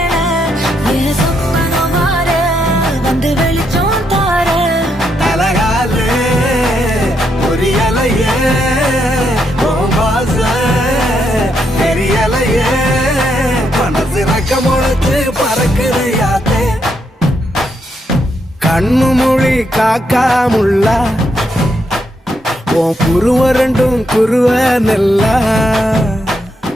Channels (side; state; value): both; normal; correlation 0.78